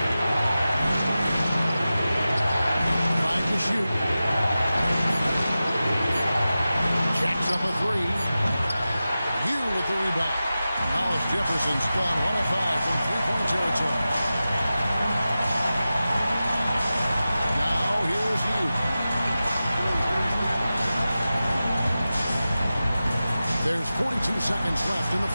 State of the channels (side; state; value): both; inverted; correlation -0.94